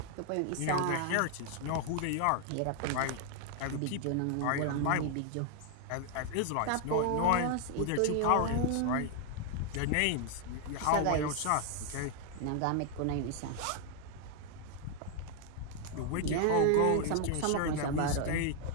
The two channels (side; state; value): both; different; correlation 0.00